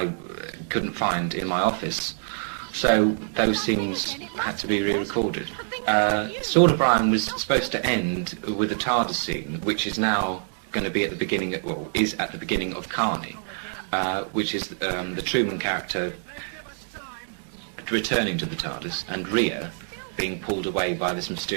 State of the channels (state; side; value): silent; left; 61 dB below the other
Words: couldn't find in my office. So those scenes had to be re-recorded. Sword of Brian was supposed to end with a Tardis scene, which is now going to be at the beginning, is at the beginning of Carny, which is the Truman character returning to the Tardis, and Rhea being pulled away by this